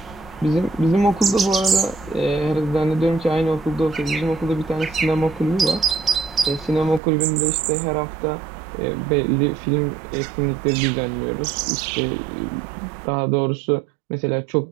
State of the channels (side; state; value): left; drops out; at 7.0 s